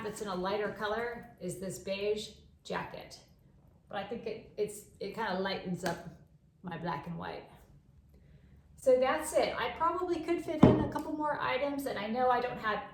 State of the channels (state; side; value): identical; both; correlation 1.00